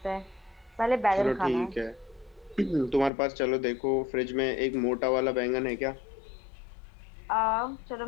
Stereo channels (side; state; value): right; drops out; at 3.1 s